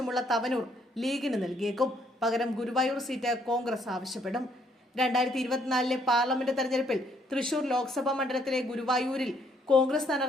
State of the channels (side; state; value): both; normal; correlation 0.68